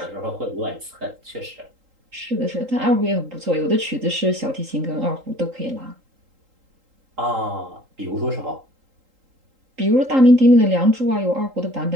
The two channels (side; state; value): left; late; 3.8 ms